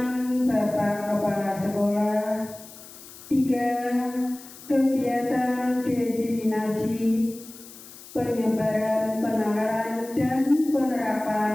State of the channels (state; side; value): noise; left; hiss, 18 dB below the sound